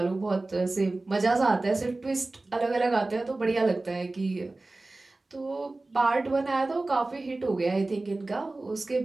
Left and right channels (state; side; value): quieter; left; 3.1 dB